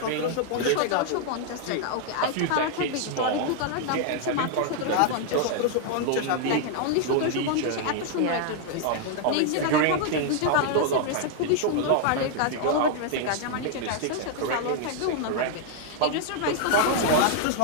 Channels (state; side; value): different; both; correlation 0.00